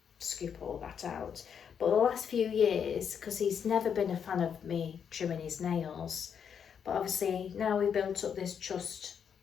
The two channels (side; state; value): right; quieter; 7.5 dB